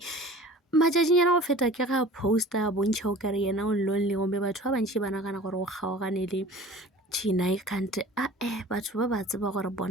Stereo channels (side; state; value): both; normal; correlation 0.43